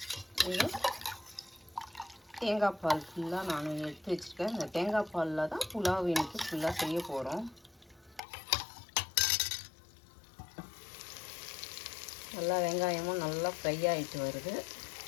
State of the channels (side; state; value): right; drops out; at 8.2 s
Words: தேங்காய் பால் ஃபுல்லாக நான் எடுத்து வச்சுருக்கேன். இந்த தேங்காய் பாலில் தான் புலாவ் எனக்கு ஃபுல்லாக செய்ய போகிறோம். நல்லா வெங்காயமும் நல்லா ஃப்ரை ஆகிட்டு வருது.